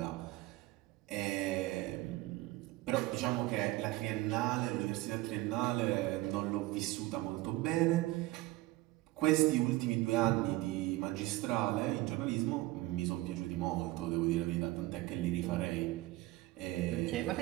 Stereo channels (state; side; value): quieter; left; 18.7 dB